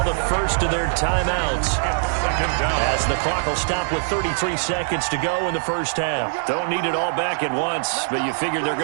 the first of their timeouts. As the clock will stop with 33 seconds to go in the first half. Don't need it all back at once, but you figure they're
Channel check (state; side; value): silent; left; 57 dB below the other